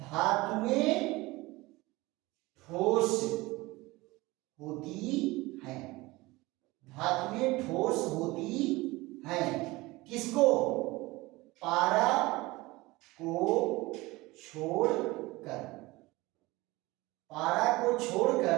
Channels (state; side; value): quieter; left; 21.1 dB